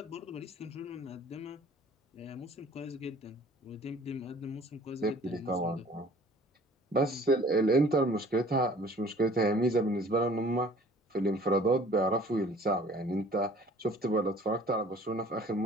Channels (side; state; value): both; normal; correlation 0.51